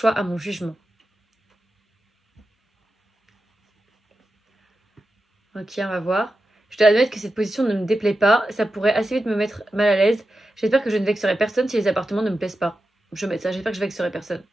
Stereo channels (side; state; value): both; normal; correlation 0.91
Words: à mon jugement. Ok, on va voir. Je dois admettre que cette position ne me déplaît pas. Ça pourrait assez vite me mettre mal à l'aise. J'espère que je ne vexerai personne si les appartements ne me plaisent pas. Je vais mettre ça, j'espère que je vexerai personne.